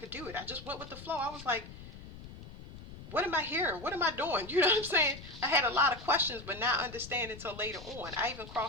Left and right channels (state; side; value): noise; left; rumble, 15 dB below the sound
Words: do it. I just went with the flow. I was like, what am I hearing? What am I doing? You know what I'm saying? I had a lot of questions, but not understanding until later on. I even